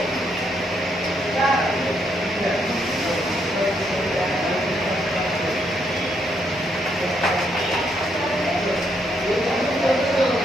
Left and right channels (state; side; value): normal; both; correlation 0.75